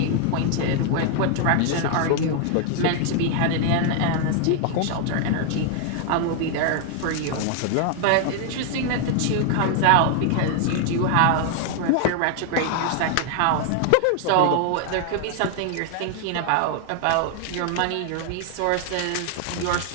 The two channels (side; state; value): both; different; correlation 0.00